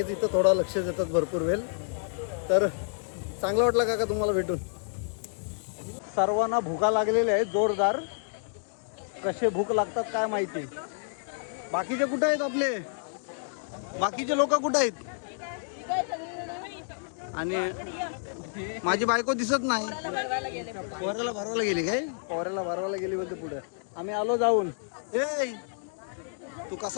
इथं थोडा लक्ष देतात भरपूर वेळ. तर चांगला वाटला काका तुम्हाला भेटून. सर्वांना भुका लागलेल्या आहेत जोरदार. कसे भूक लागतात काय माहिती. बाकीचे कुठे आहेत आपले? बाकीचे लोक कुठे आहेत? आणि माझी बायको दिसत नाही. पोऱ्याला भरवायला गेली काय? पोऱ्याला भरवायला गेली बोलते पुढे. आम्ही आलो जाऊन. ए तू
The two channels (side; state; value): right; silent; digital silence